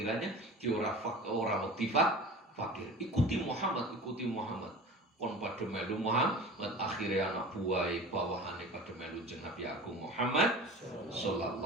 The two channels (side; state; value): both; normal; correlation 0.38